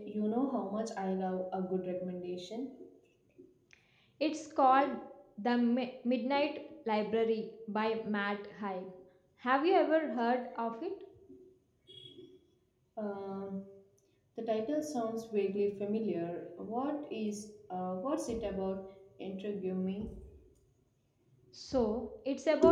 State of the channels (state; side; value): identical; both; correlation 1.00